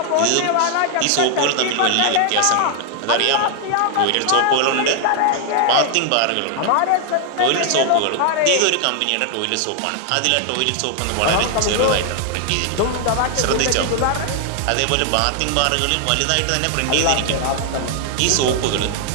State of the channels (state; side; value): different; both; correlation 0.00